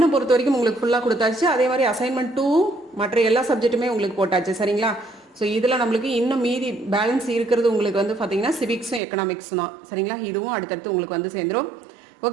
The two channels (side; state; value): left; drops out; at 9.0 s